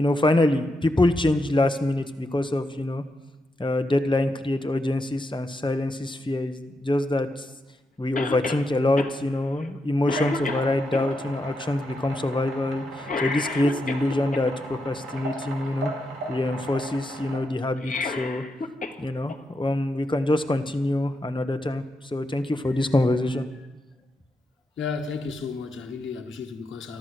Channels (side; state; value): both; normal; correlation 0.84